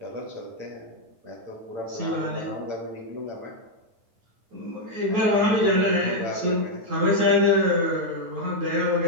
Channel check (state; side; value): late; left; 9.4 ms